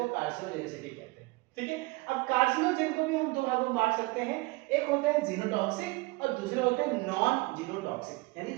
कार्सिनोजेनिसिटी कहते हैं। ठीक है, अब कार्सिनोजेन को भी हम 2 भागों में बांट सकते हैं, एक होता है जीनोटॉक्सिक और दूसरे होते हैं नॉन जीनोटॉक्सिक। यानी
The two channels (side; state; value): left; quieter; 23.7 dB